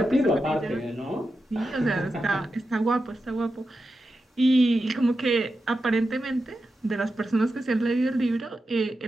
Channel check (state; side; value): normal; both; correlation 0.90